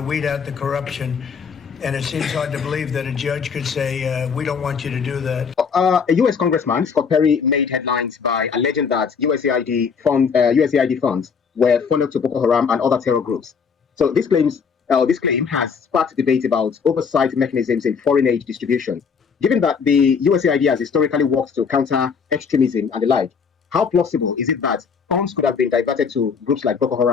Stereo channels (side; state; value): right; quieter; 6.0 dB